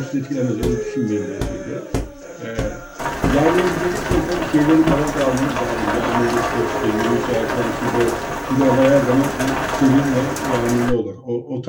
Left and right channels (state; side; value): identical; both; correlation 1.00